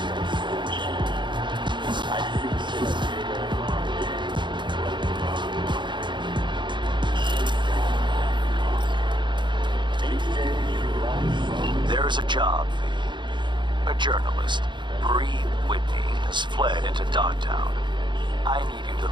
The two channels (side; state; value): left; late; 0.23 ms